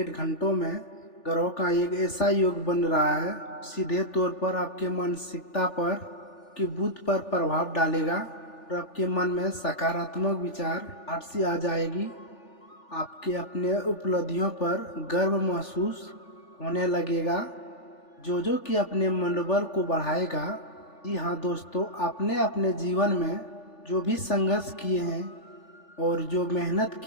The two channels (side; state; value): right; late; 3.4 ms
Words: घंटों में ग्रहों का एक ऐसा योग बन रहा है, सीधे तौर पर आपके मानसिकता पर कि बुद्ध पर प्रभाव डालेगा और आपके मन में सकारात्मक विचार आट सी आ जाएगी। आपके अपने उपलब्धियों पर गर्व महसूस होने लगेगा, जो कि अपने मनोबल को बढ़ाएगा। जी हाँ दोस्तों, आपने अपने जीवन में जो भी संघर्ष किए हैं और जो मेहनत